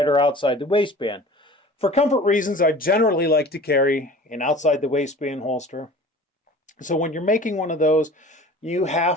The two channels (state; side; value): normal; both; correlation 0.42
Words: or outside the waistband. For comfort reasons, I generally like to carry an outside the waistband holster. So when you're making one of those, you